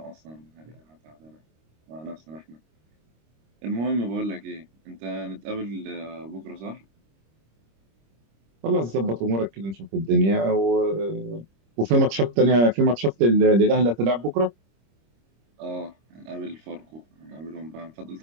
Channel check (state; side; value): late; left; 26 ms